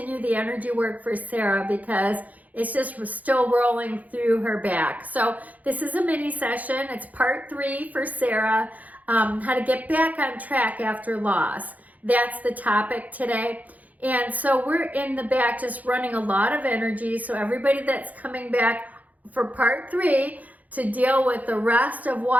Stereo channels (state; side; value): late; left; 0.077 ms